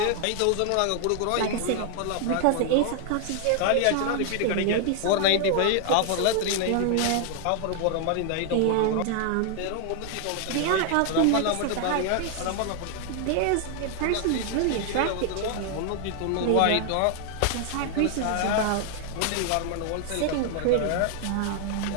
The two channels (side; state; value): both; different; correlation 0.00